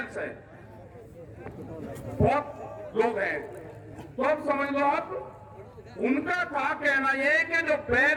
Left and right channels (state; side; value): identical; both; correlation 1.00